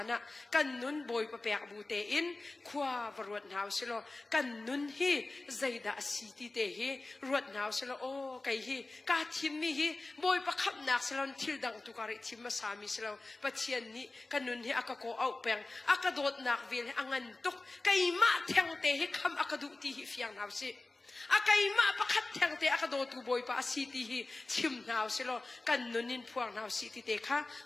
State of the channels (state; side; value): quieter; right; 3.1 dB